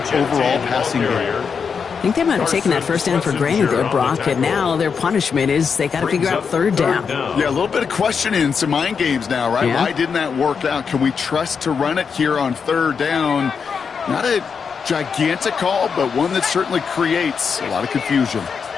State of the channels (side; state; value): right; quieter; 6.1 dB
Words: overall passing game. I think they might have taken that first down for granted there, Brock, and now their punishment is they got to figure out 3rd down. Yeah, a little bit of questioning in some mind games now, right? Yeah. Why didn't that work out? Can we trust to run it here on 3rd down? Not a gigantic call, but one that certainly creates a lot of confusion.